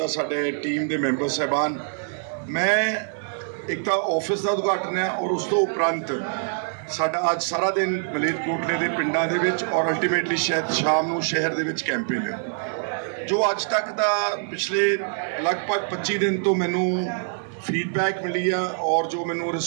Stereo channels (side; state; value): left; silent; digital silence